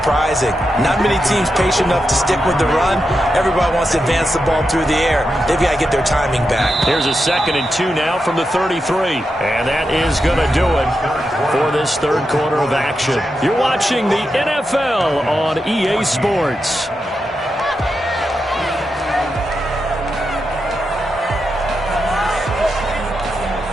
Not many teams patient enough to stick with the run. Everybody wants to advance the ball through the air. They've got to get their timing back. Here's a 2nd and 2 now from the 33. And that is going to do it for this third quarter of action. You're watching the NFL on EA Sports.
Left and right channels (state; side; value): normal; both; correlation 0.87